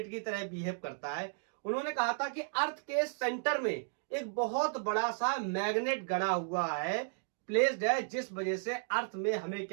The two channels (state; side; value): silent; left; digital silence